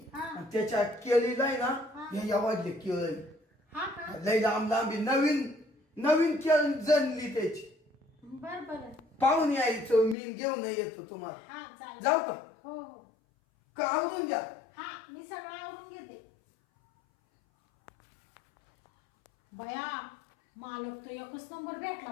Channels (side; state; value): right; drops out; at 10.2 s